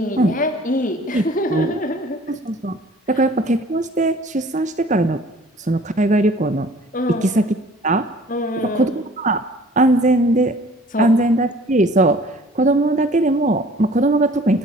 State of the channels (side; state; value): both; normal; correlation 0.51